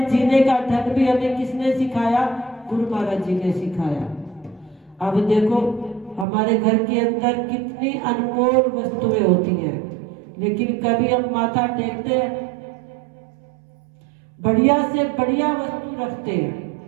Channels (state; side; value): drops out; left; at 6.2 s